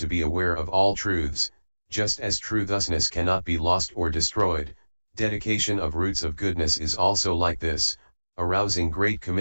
be aware of all truths, just as true thusness cannot be lost or destroyed. Dedication of roots of goodness is also like this, arousing great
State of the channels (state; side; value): inverted; both; correlation -1.00